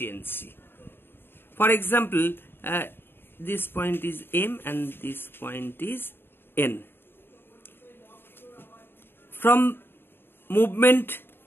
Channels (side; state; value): right; late; 0.10 ms